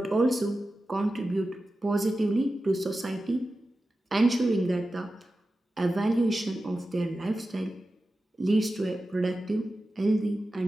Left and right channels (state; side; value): normal; both; correlation 0.93